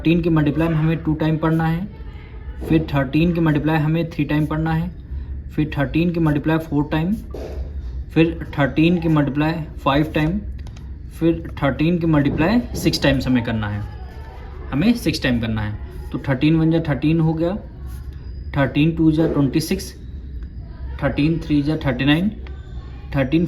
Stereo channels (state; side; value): identical; both; correlation 1.00